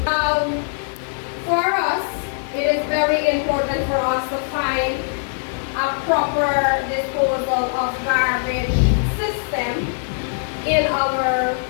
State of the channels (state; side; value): silent; right; digital silence